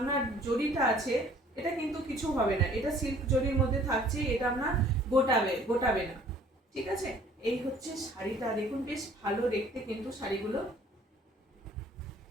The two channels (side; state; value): both; normal; correlation 0.55